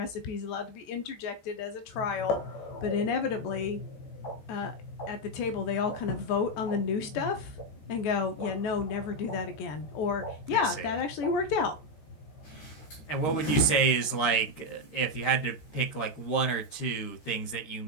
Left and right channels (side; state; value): right; late; 13 ms